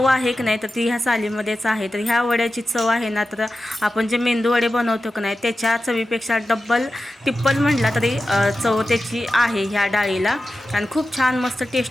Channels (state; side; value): normal; both; correlation 0.93